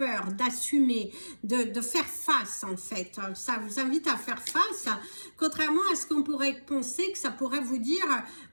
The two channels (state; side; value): inverted; both; correlation -1.00